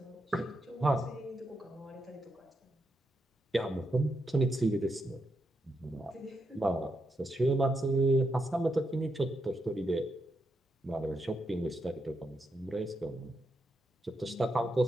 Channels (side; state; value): both; normal; correlation 0.83